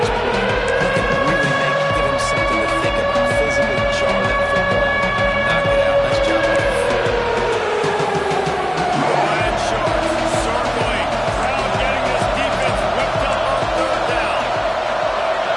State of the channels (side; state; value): both; identical; correlation 1.00